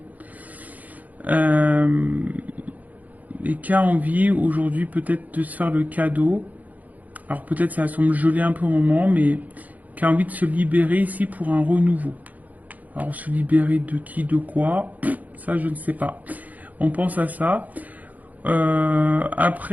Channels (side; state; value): left; late; 0.078 ms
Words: et qui a envie aujourd'hui peut-être de se faire le cadeau. Alors peut-être ça semble geler un peu au moment, mais qui a envie de se libérer ici pour un renouveau. Alors se libérer de qui, de quoi, ça je ne sais pas. On pense à ça.